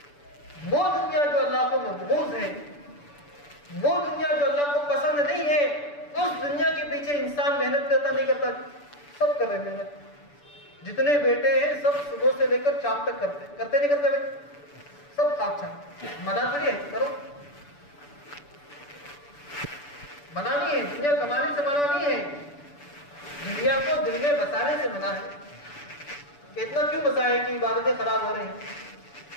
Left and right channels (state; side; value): late; right; 6.9 ms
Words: وہ دنیا جو اللہ کو مبغوض ہے، وہ دنیا جو اللہ کو پسند نہیں ہے، اس دنیا کے پیچھے انسان محنت کرتا نہیں کرتا؟ سب کر رہے ہیں محنت. جتنے بیٹے ہیں سب صبح سے لے کر شام تک کرتے نہیں کرتے بھائی؟ سب خواب چھاپ منع کریے، کرو. منع نہیں ہے، دنیا کمانے سے منع نہیں ہے، دنیا کو دل میں بسانے سے منع ہے. کہ اتنا کیوں بسائے کہ عبادتیں خراب ہو رہی ہیں.